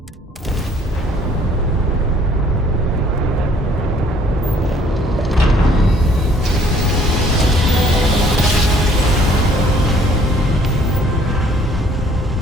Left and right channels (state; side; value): normal; both; correlation 0.60